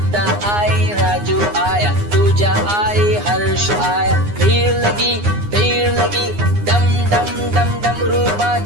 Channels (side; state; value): left; late; 9.7 ms